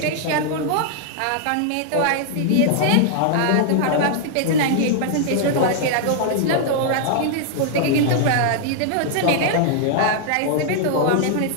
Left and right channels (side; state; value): both; different; correlation -0.01